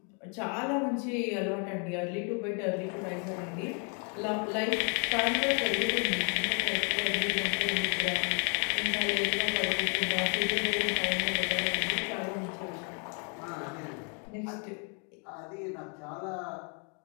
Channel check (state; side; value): quieter; right; 38.8 dB